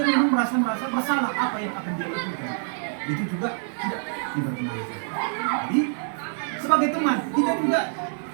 memang merasa bersalah apa yang akan dia lakukan. Itu juga tidak dibenarkan. Jadi sebagai teman, kita juga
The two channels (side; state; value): left; silent; digital silence